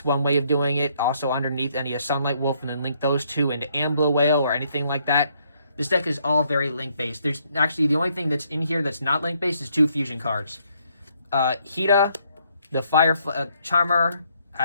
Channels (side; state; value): both; inverted; correlation -0.71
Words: one way of doing it. Also underneath any of Sunlight Wolf, and then link those 2 into Amber Whale or anything like that. This deck is all very link based. There's actually the only thing that's in here that's not link based is 2 fusion cards. Hita, the Fire Charmer,